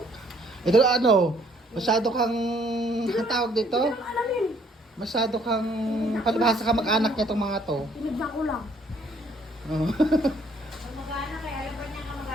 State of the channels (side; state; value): both; normal; correlation 0.63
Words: Ito ano? Masyado kang tawag dito? Alamin. Masyado kang palibhasa ka mag-anak niya itong mga to. Pinagda ko lang. Oh. Mag-anak eh. Alam ba niya ka